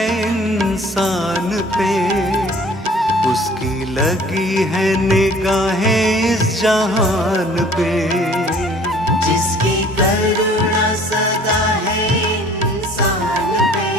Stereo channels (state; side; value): normal; both; correlation 0.52